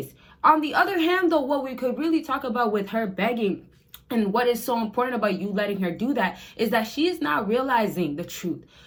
On the other hand, though, what we could really talk about with her begging, and what is so important about you letting her do that, is that she is not realizing the truth.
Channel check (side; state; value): both; identical; correlation 1.00